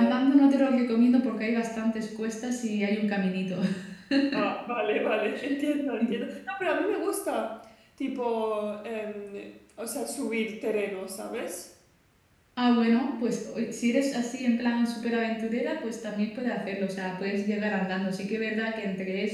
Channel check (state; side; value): identical; both; correlation 1.00